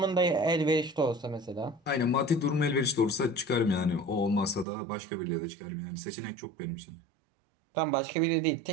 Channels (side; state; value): left; drops out; at 4.7 s